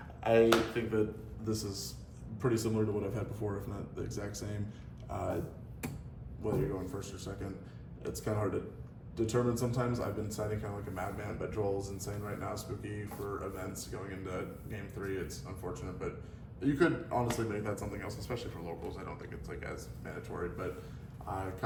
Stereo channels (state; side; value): identical; both; correlation 1.00